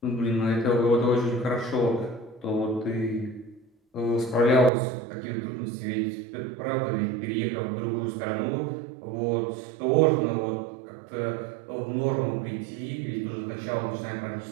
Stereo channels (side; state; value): left; drops out; at 4.7 s